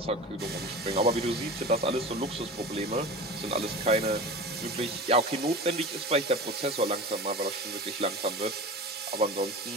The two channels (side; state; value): both; normal; correlation 0.33